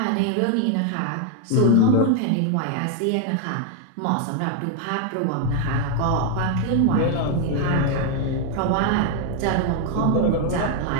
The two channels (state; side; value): different; both; correlation 0.00